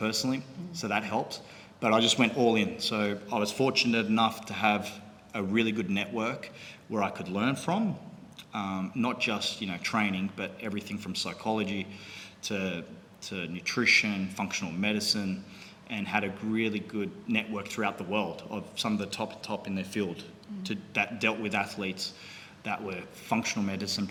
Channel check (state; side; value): identical; both; correlation 1.00